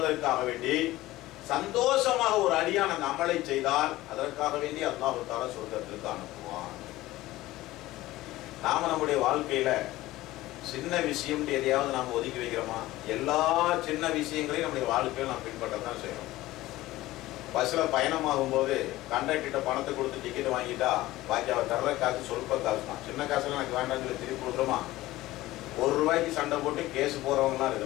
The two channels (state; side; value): quieter; right; 17.2 dB